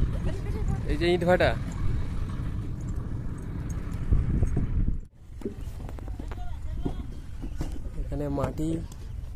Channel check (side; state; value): both; identical; correlation 1.00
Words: এই যে ইটভাটা, এখানে মাটি